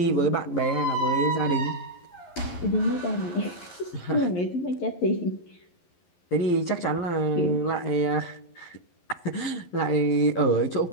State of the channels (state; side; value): late; right; 11 ms